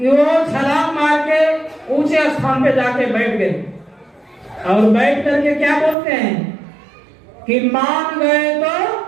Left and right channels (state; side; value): drops out; left; at 6.0 s